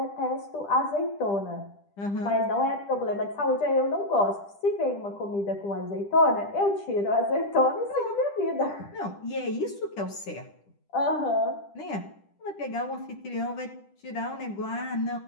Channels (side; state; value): right; late; 10 ms